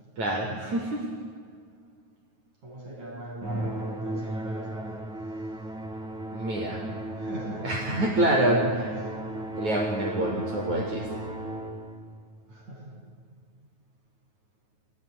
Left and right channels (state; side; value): late; left; 9.3 ms